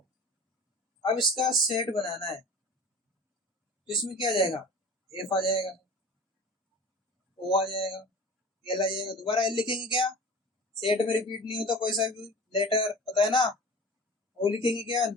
अब इसका सेट बनाना है तो इसमें क्या आ जाएगा? एफ आ जाएगा, ओ आ जाएगा, एल आ जाएगा। दोबारा एल लिखेंगे क्या? सेट में रिपीट नहीं होता कोई सा भी लेटर, पता है ना। ओ लिखेंगे क्या?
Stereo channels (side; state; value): both; normal; correlation 0.39